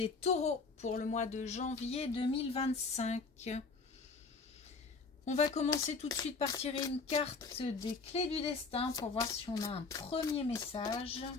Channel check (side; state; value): right; quieter; 4.4 dB